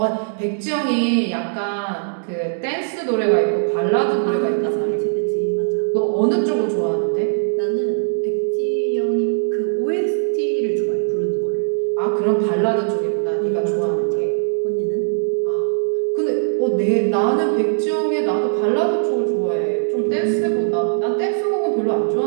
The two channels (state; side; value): silent; left; digital silence